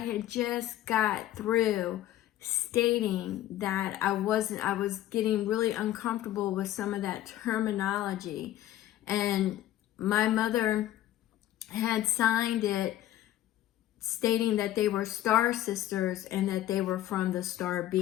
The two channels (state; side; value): quieter; right; 13.5 dB